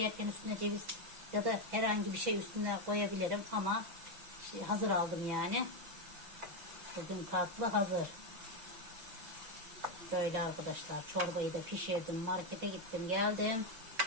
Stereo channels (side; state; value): left; late; 6.0 ms